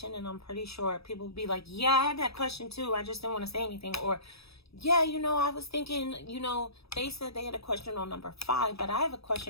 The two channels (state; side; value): late; right; 0.77 ms